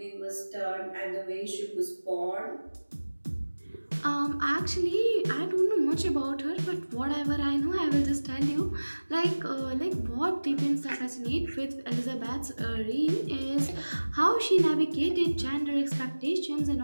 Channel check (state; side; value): inverted; both; correlation -1.00